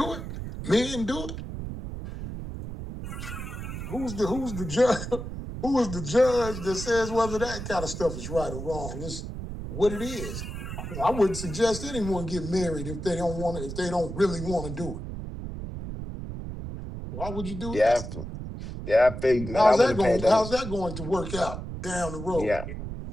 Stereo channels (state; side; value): noise; right; rumble, 7 dB below the sound